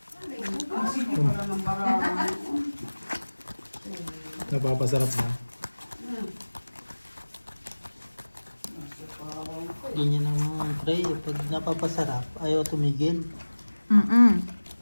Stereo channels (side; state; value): both; inverted; correlation -1.00